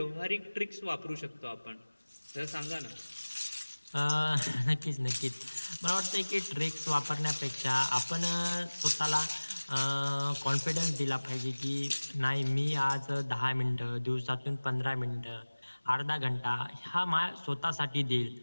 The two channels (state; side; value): inverted; both; correlation -1.00